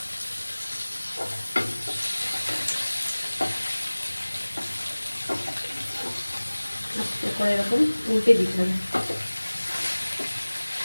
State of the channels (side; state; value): both; inverted; correlation -1.00